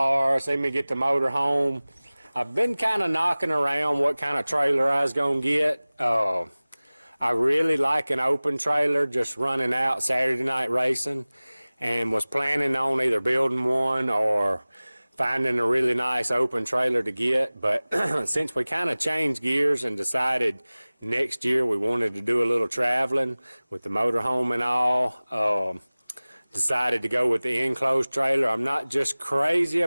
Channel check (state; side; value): inverted; both; correlation -0.99